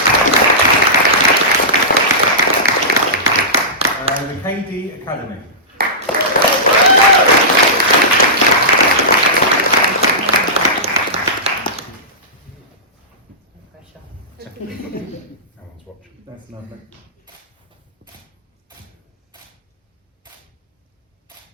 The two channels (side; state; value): both; normal; correlation -0.17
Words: The KD Academy. Pressure. No one's watching. That's lovely.